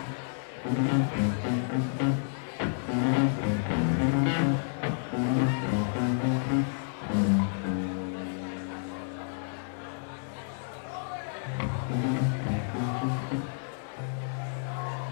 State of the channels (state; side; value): silent; right; digital silence